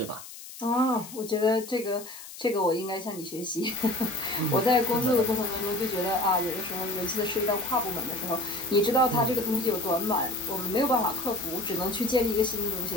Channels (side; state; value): left; noise; hiss, 14 dB below the sound